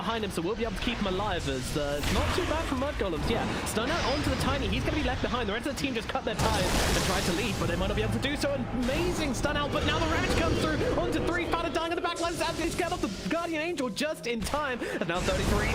him, so we'll be able to keep him alive as it's not too bad for Mud Golems. Yeah, stun out onto the Tiny. He's going to be left behind. The rest of the team just cut their ties and tried to leave, but they might not be able to do so. Amazing stun out, but now the Ravage comes through onto 3. Fada dying on the back line. He's got off the Guardian Angel just in time, and now 33.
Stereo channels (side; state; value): both; identical; correlation 1.00